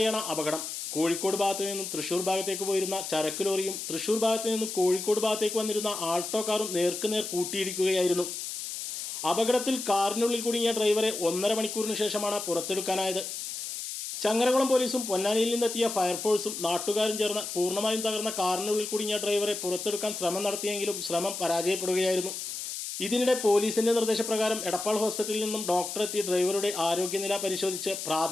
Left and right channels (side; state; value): left; noise; hiss, 6 dB below the sound